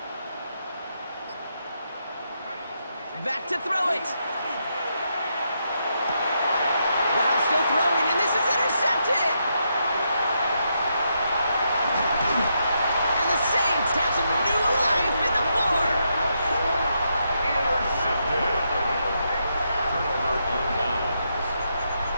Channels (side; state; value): both; inverted; correlation -0.81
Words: Back to throw it. Wow, still throwing, and this is intercepted. And the Saints have some new life in the 4th. Intercepted. Turnover on downs.